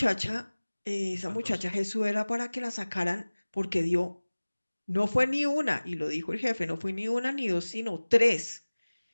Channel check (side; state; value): both; inverted; correlation -1.00